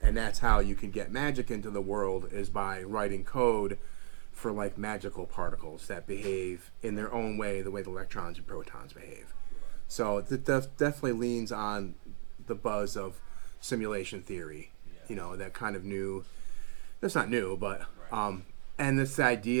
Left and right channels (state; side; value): silent; left; digital silence